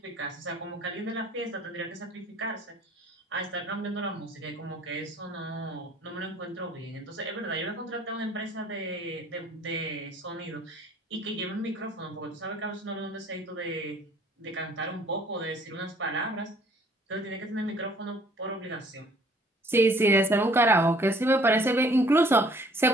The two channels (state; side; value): normal; both; correlation 0.57